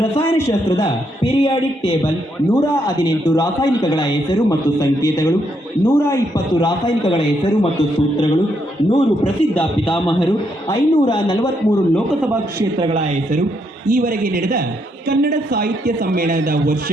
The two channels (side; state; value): both; normal; correlation 0.76